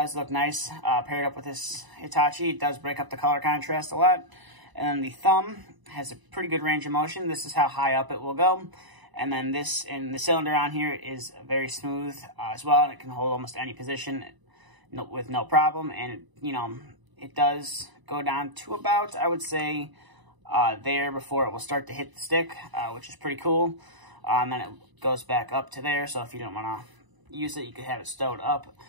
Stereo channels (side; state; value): left; late; 1.0 ms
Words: look nice paired up with this Hitachi. It does break up the color contrast a lot. And then the thumb has a pretty good range of motion. This is how high up it will go. And then this, and the cylinder on here is very smooth as well. And it can hold almost any position with no problem. And, you know, it does go down to about, I would say, there before it will start to hit the stick, which is pretty cool. And then it goes back up to there. So if you don't want to use it, you could have it stowed up.